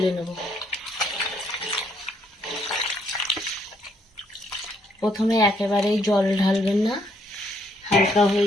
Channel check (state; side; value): normal; both; correlation 0.71